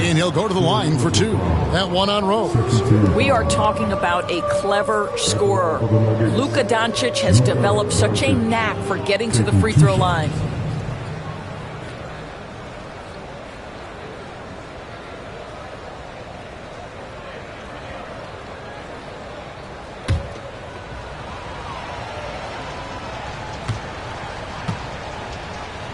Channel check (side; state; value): both; identical; correlation 1.00